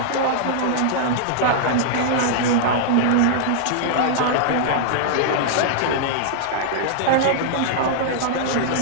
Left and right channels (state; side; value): different; both; correlation -0.01